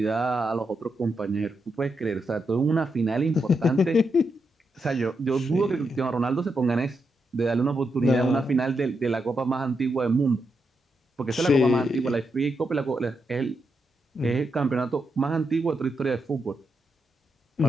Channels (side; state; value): both; normal; correlation 0.83